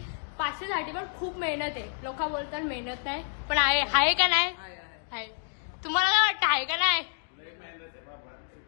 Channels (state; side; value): silent; right; digital silence